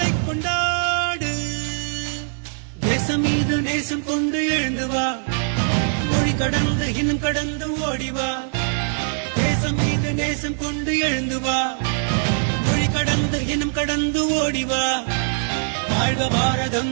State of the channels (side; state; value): left; silent; digital silence